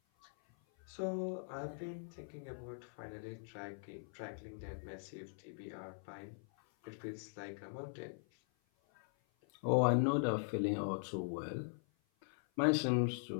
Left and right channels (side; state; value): right; silent; 50 dB below the other